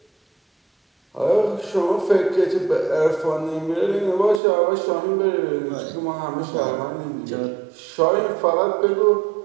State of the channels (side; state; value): left; drops out; at 4.4 s